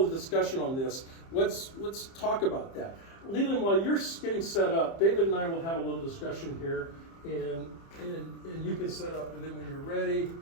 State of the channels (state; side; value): late; right; 30 ms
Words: of the discussion on this, let's talk about that. Leland, while you're getting set up, David and I will have a little discussion here, and you can set up, and then when you're ready,